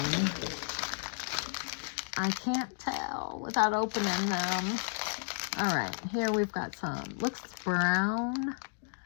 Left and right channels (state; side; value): silent; right; digital silence